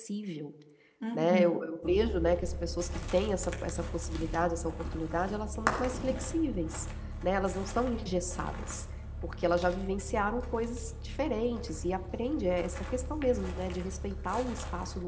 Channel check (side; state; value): both; identical; correlation 1.00